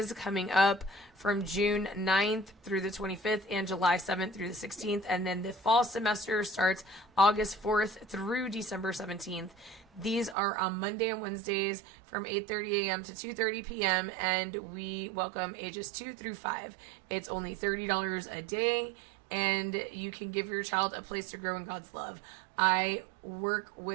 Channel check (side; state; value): left; drops out; at 10.4 s